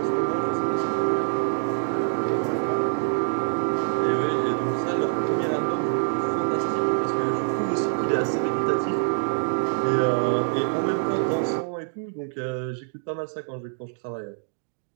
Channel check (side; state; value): left; silent; digital silence